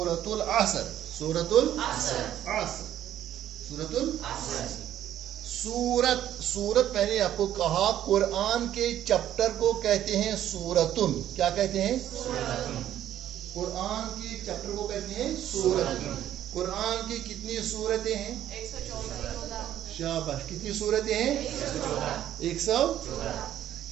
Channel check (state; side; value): quieter; left; 11.6 dB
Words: العصر۔ سورۃ العصر سورت پہلے آپ کو کہا قرآن کے چپٹر کو کہتے ہیں سورتن۔ کیا کہتے ہیں؟ قرآن کے چپٹر کو کہتے ہیں سورتن۔ قرآن کی کتنی سورتیں ہیں؟ 114۔ شاباش، کتنی سورتیں ہیں؟ 114۔